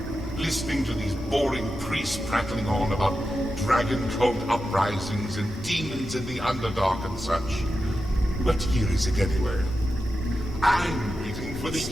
listening to these boring priests prattling on about dragon cult uprisings and demons in the Underdark and such. What year is it anyway? I'm waiting for the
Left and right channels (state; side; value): normal; both; correlation 0.90